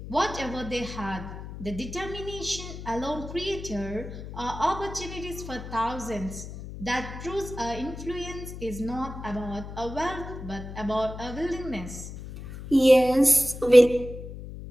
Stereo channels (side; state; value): left; noise; hum, 11 dB below the sound